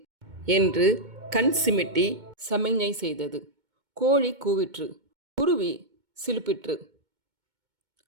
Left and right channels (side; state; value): left; late; 2.2 ms